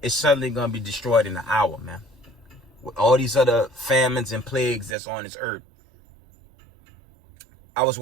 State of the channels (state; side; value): drops out; left; at 5.0 s